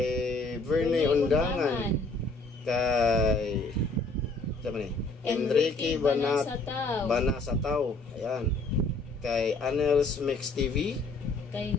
Verne Undangan, kay Enrique Banasatao, ayan, kay Anels Mix TV, kay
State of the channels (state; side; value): quieter; right; 3.3 dB